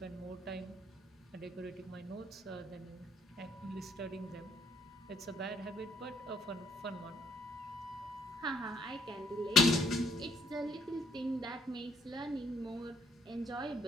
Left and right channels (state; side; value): normal; both; correlation 0.67